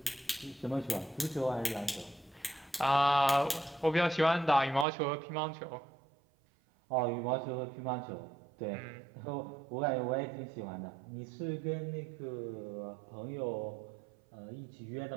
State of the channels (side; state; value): left; drops out; at 4.9 s